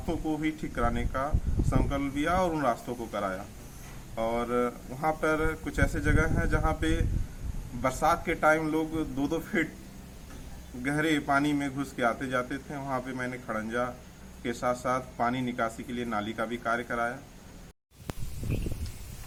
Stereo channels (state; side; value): identical; both; correlation 1.00